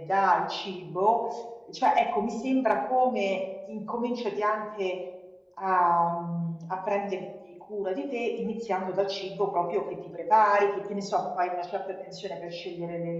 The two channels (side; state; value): both; identical; correlation 1.00